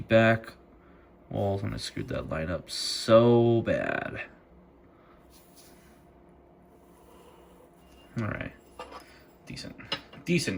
walls, and I screwed that line up so bad. All right,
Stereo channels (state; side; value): identical; both; correlation 1.00